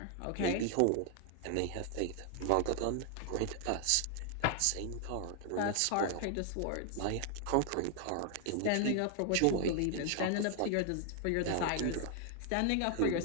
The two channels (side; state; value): both; different; correlation 0.00